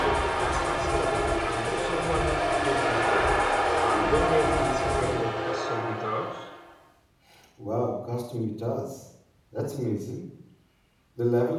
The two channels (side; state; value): both; identical; correlation 1.00